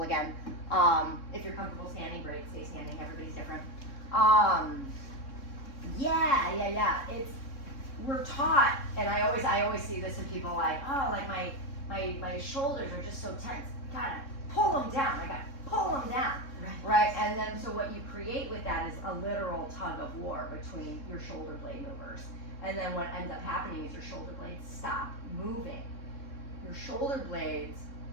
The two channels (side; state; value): right; late; 3.6 ms